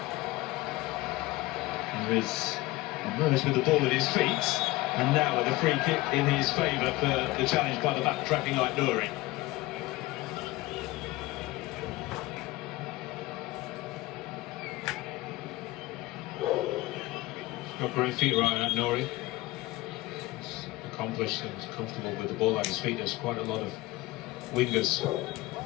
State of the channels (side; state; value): right; quieter; 19.1 dB